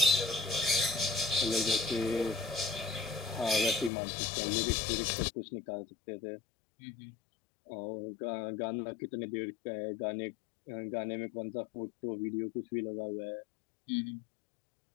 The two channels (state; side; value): drops out; right; at 3.9 s